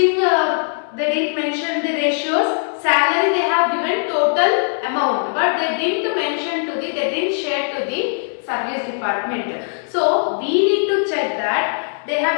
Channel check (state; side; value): silent; right; 66 dB below the other